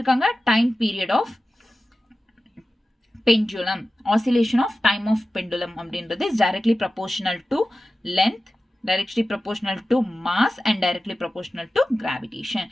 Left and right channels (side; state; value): both; normal; correlation 0.94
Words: time period of pendulum, oscillation of time of pendulum அப்படின்றது is directly proportional to length, directly proportional to mass, and directly proportional to gravitation.